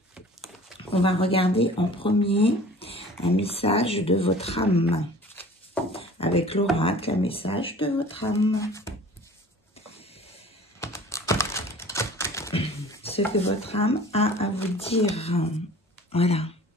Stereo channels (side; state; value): both; normal; correlation 0.46